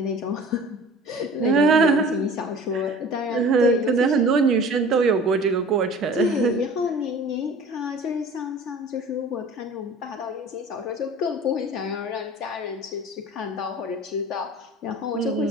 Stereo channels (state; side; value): normal; both; correlation 0.43